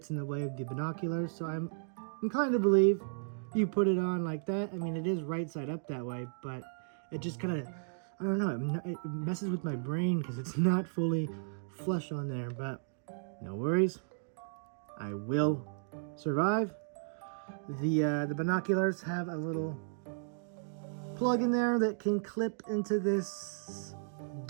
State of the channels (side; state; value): left; silent; digital silence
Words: in the way of the binoculars. So I'm inclined to believe you put it on like that. I mean, it is right side up that way, but it just kind of, I don't know, it messes with my brain because it's not fully flush on there, but no worries. I will survive. The binoculars have a little plug in there that can clip into this